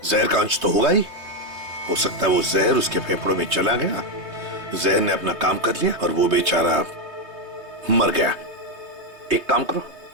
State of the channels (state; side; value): late; left; 3.2 ms